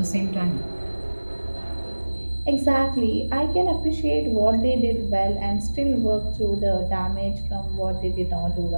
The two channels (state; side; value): inverted; both; correlation -1.00